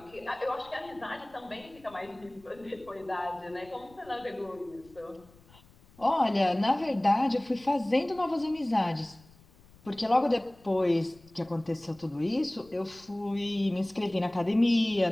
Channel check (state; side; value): noise; left; rumble, 26 dB below the sound